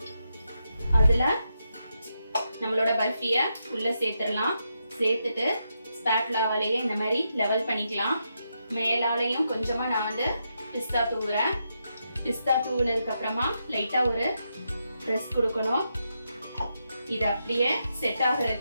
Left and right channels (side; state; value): both; inverted; correlation -0.84